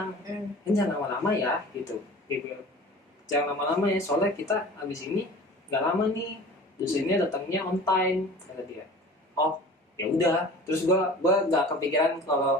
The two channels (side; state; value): both; normal; correlation 0.41